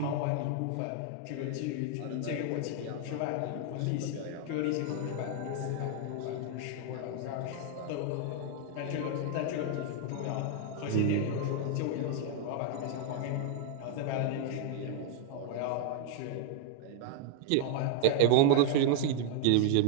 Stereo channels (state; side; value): different; both; correlation 0.00